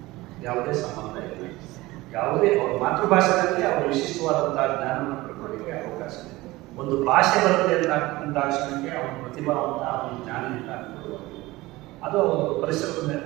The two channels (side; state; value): left; quieter; 19.7 dB